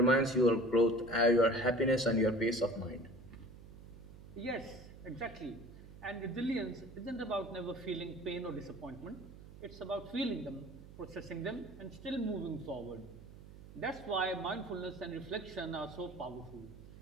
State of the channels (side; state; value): right; noise; hum, 17 dB below the sound